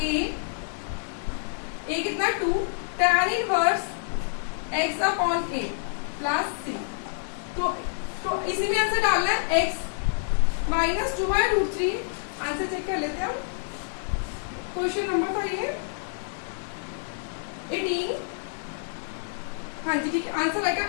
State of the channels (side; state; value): right; silent; digital silence